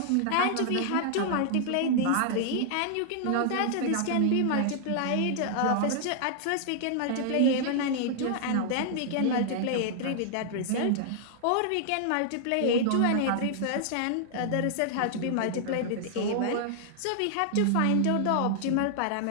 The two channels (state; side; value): different; both; correlation -0.01